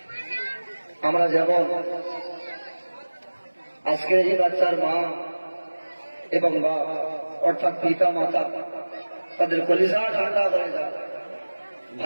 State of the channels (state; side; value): inverted; both; correlation -1.00